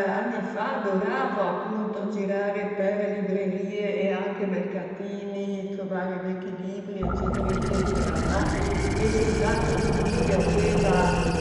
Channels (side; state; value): both; identical; correlation 1.00